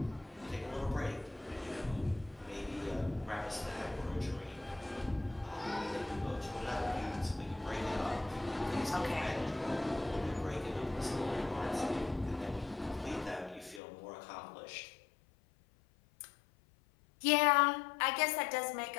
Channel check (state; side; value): drops out; right; at 13.8 s